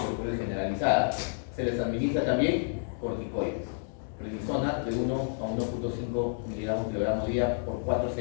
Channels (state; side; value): silent; right; digital silence